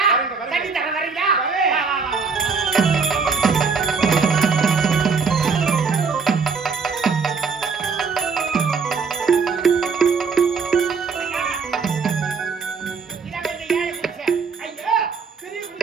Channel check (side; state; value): left; quieter; 5.2 dB